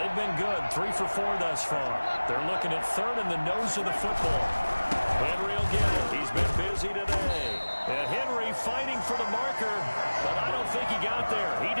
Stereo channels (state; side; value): inverted; both; correlation -1.00